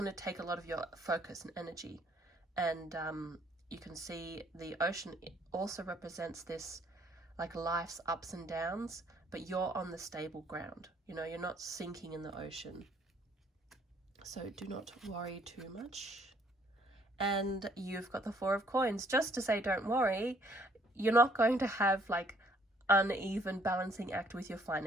to take a lot of your focus and energy. And you can see the ocean also represents this like life's ups and downs, but you're on the stable ground. You know, you're not sinking in the ocean. So do not worry too much. And you've got the 4 of Coins. Just to say don't worry, you're not going to have like uneven balancing act with your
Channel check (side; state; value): both; normal; correlation 0.63